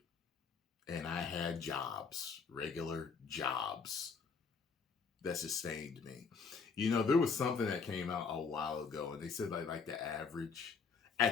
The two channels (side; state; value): right; quieter; 5.3 dB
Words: And I had jobs, regular jobs, that sustained me. You know, there was something that came out a while ago, and they said like the average,